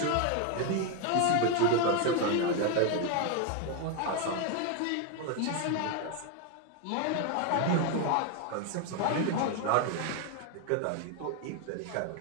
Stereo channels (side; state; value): both; different; correlation 0.01